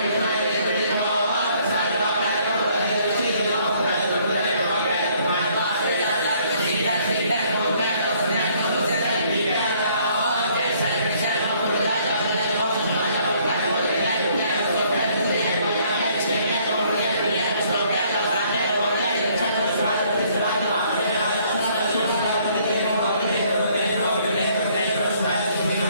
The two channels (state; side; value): inverted; both; correlation -0.63